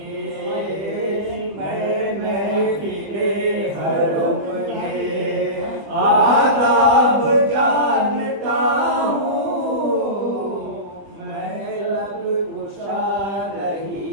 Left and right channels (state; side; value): late; left; 20 ms